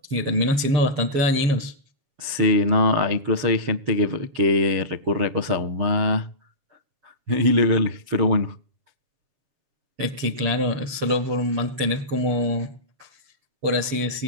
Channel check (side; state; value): left; late; 7.2 ms